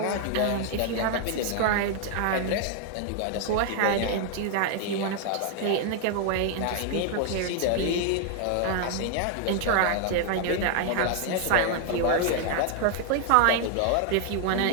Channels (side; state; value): both; different; correlation 0.00